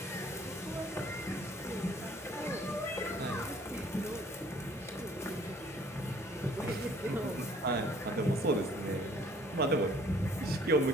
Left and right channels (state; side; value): normal; both; correlation 0.57